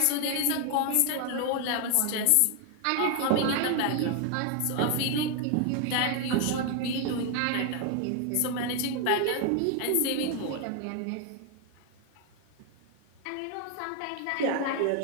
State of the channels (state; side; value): different; both; correlation 0.00